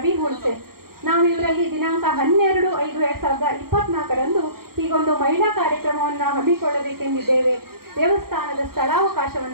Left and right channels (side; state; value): left; late; 0.93 ms